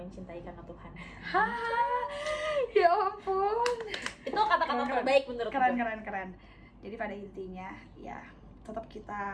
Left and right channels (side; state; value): both; identical; correlation 1.00